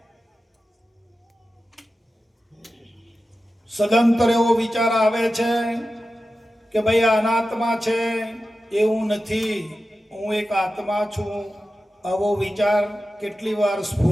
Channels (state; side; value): normal; both; correlation 0.93